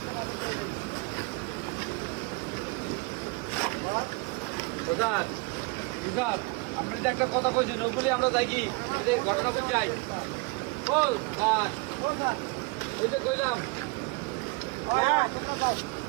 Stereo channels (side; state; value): left; quieter; 27.9 dB